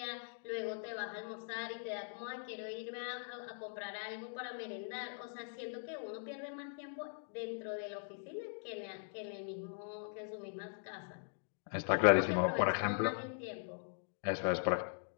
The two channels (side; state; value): right; silent; digital silence